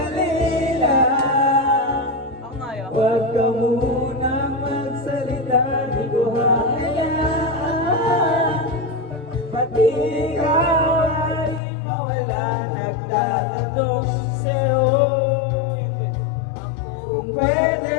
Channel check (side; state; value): right; drops out; at 11.6 s